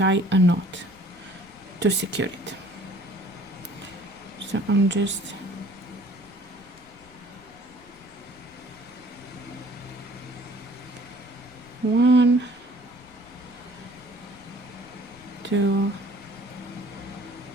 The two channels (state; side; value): noise; left; rumble, 25 dB below the sound